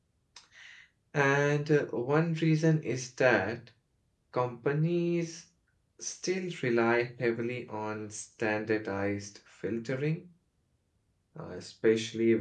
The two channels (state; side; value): identical; both; correlation 1.00